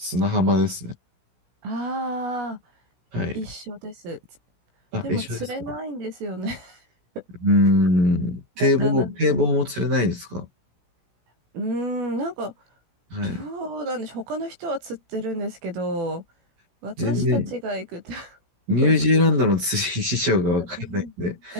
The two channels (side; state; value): left; late; 16 ms